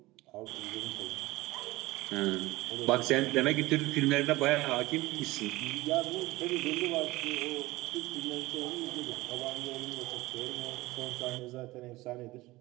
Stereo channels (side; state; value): left; quieter; 19.6 dB